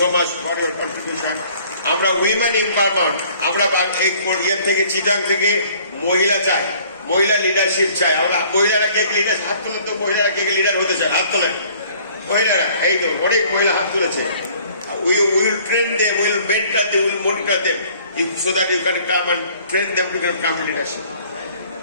so much for your contribution. আমরা women empowerment, আমরা Korea থেকে চিটাং থেকে মহিলা চাই, মহিলা leadership চাই। আমরা মহিলারা কে লিডার, হাত তোলেন তো, মহিলারা কে লিডার হতে চায়, হাত তোলেন মহিলারা। এই তো অনেক মহিলা হাত তুলেছে। We will train them, we will mentor them, we will monitor them so that you can come and train them to become leadership.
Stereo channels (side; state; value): both; inverted; correlation -0.55